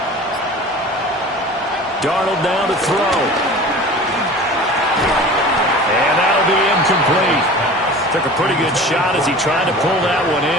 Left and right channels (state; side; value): normal; both; correlation 0.39